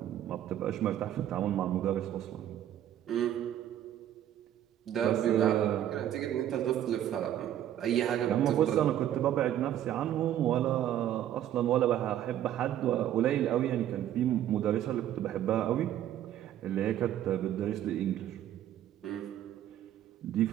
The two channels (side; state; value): left; quieter; 11.5 dB